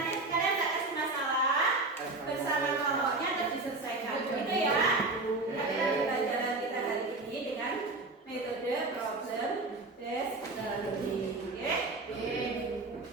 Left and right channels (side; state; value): left; quieter; 3.1 dB